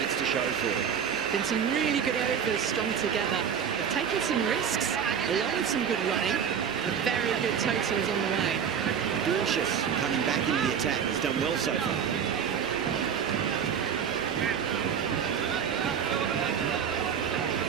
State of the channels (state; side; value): quieter; left; 7.7 dB